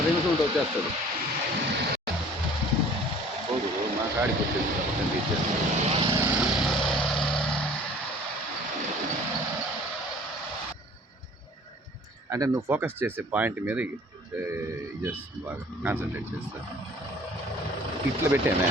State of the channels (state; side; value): normal; both; correlation 0.50